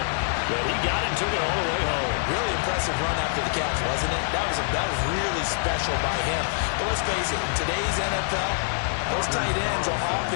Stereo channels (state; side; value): silent; right; digital silence